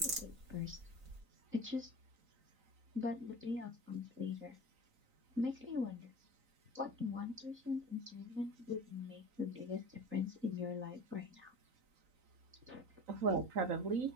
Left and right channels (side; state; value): left; late; 3.9 ms